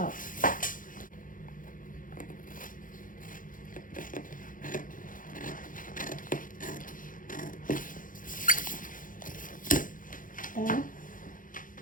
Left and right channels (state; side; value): late; right; 0.39 ms